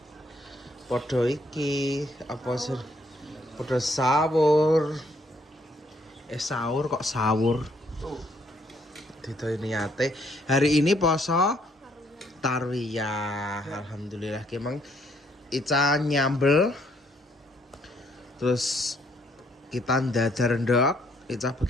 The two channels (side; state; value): both; normal; correlation 0.69